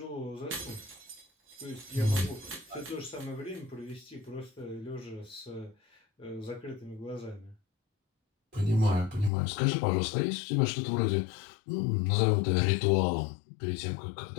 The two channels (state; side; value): drops out; right; at 9.3 s